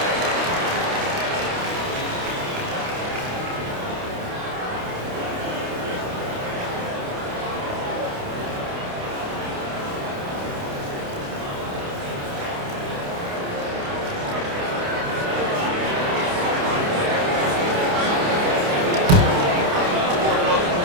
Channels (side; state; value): left; late; 29 ms